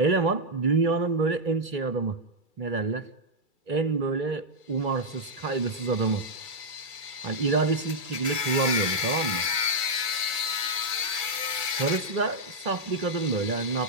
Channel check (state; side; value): late; left; 1.6 ms